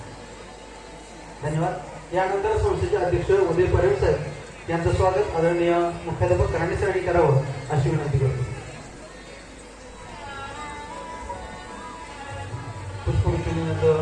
धन्यवाद. यानंतर संस्थेचे अध्यक्ष उदय परांजपे साहेब यांचं स्वागत आदरणीय मुख्याध्यापक राणे सरांनी करावं अशी विनंती करतो.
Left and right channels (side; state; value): both; identical; correlation 1.00